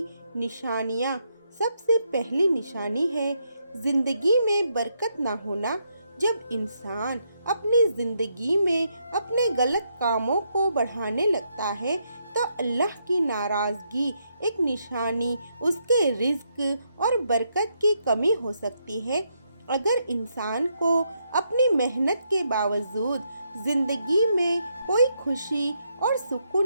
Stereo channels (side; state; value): both; inverted; correlation -0.78